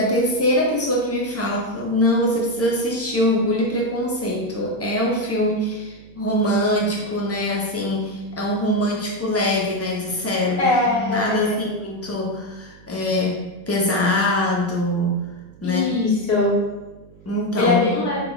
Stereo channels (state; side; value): noise; right; hum, 24 dB below the sound